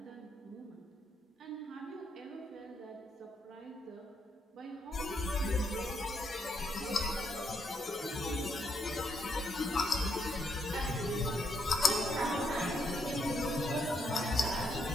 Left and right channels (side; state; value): both; normal; correlation 0.77